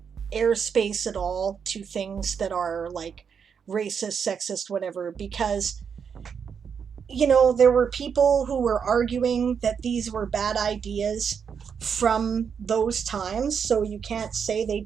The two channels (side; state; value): left; quieter; 6.8 dB